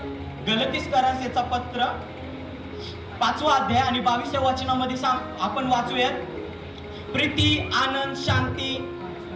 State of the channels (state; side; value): identical; both; correlation 1.00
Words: गलतीकरांचं पत्र 5वा अध्याय आणि 22व्या वचनामध्ये आपण वाचूयात. प्रीती, आनंद, शांती,